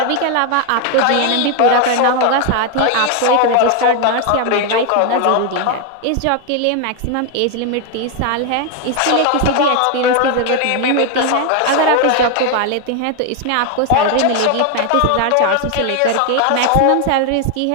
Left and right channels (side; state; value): both; different; correlation 0.01